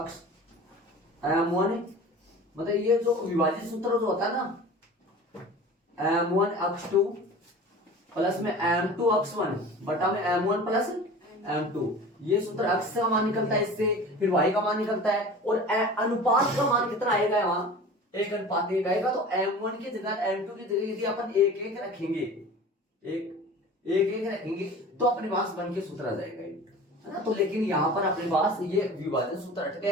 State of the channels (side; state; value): both; normal; correlation 0.39